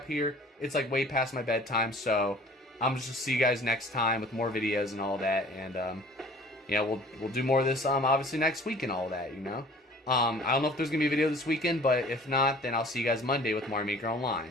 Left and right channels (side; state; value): both; normal; correlation 0.49